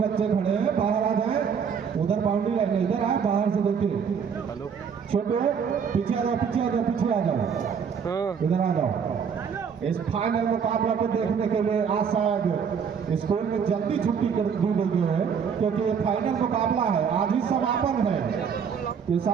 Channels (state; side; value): quieter; left; 6.8 dB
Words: खड़े हैं बाहर आ जाए, उधर बाउंड्री लाइन इधर आए, बाहर से देखिए, छोटे पीछे आ जाओ, पीछे आ जाओ, पीछे आ जाओ, इधर आ जाओ। इस फाइनल मुकाबला को देखने के लिए आज शायद स्कूल में जल्दी छुट्टी कर दी गई है, क्योंकि ये फाइनल मुकाबला है, आज ही समापन है। ये